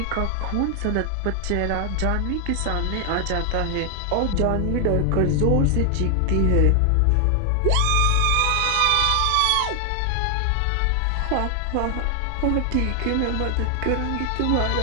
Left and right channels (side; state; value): both; different; correlation 0.00